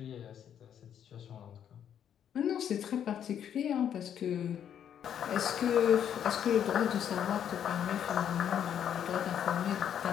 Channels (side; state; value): right; quieter; 9.2 dB